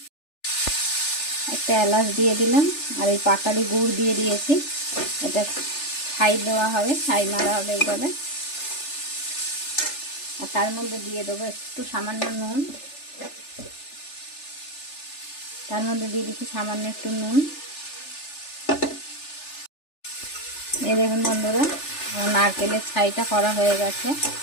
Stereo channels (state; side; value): late; right; 3.4 ms